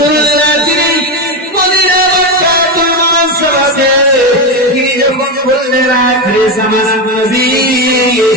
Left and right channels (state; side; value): normal; both; correlation 0.13